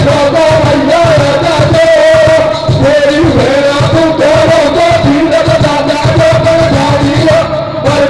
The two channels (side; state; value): both; identical; correlation 1.00